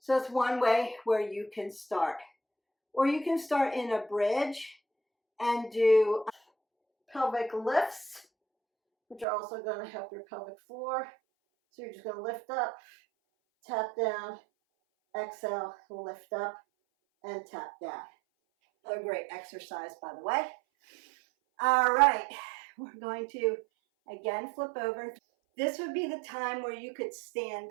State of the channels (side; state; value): left; drops out; at 9.2 s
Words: So it's one way where you can start. Or you can start in a bridge and do pelvic lifts, which are also going to help your pelvic floor. So you're just going to lift up, tap down, exhale, lift up, and tap down. A great exercise, by the way. All right, we're going to again flip over. This would be the time where you could